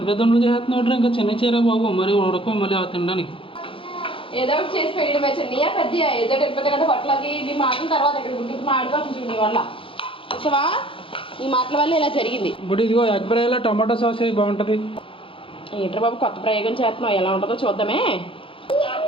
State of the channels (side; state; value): right; late; 0.26 ms